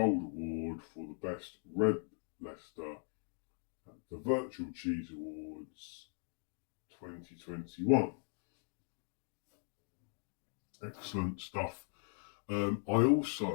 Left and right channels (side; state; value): right; silent; 52 dB below the other